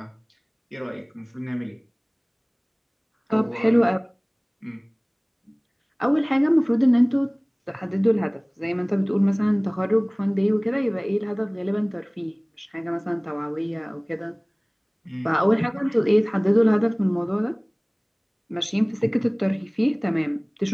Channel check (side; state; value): both; identical; correlation 1.00